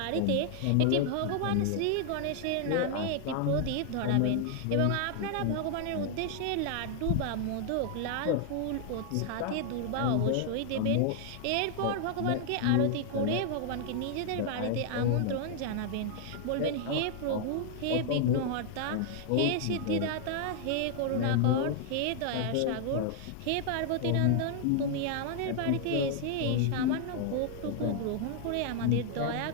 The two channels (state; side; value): different; both; correlation -0.01